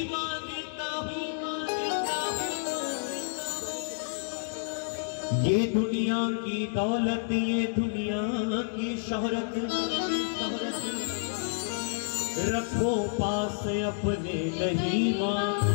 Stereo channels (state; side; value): silent; right; digital silence